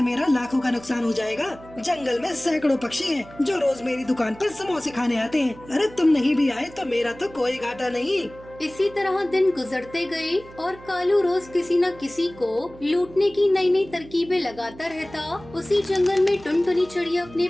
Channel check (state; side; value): noise; right; hum, 20 dB below the sound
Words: मेरा लाखों का नुकसान हो जाएगा? जंगल में सैकड़ों पक्षी हैं जो रोज मेरी दुकान पर समोसे खाने आते हैं। अरे तुम नहीं भी आए तो मेरा तो कोई घाटा नहीं। इसी तरह दिन गुजरते गए और कालू रोज किसी न किसी को लूटने की नई नई तरकीबें लगाता रहता। उसी जंगल में टुनटुनी चिड़िया अपने